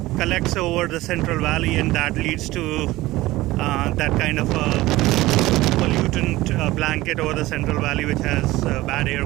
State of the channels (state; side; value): quieter; left; 18.1 dB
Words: collects over the Central Valley, and that leads to that kind of a pollutant blanket over the Central Valley, which has bad air